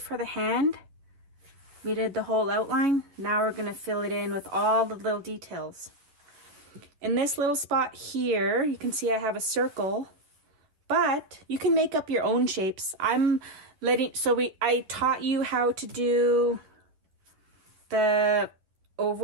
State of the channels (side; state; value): left; late; 11 ms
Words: the hand, we did the whole outline. Now we're going to fill it in with all the little details. In this little spot here, you can see I have a circle, but you can make up your own shapes. I taught you how to do the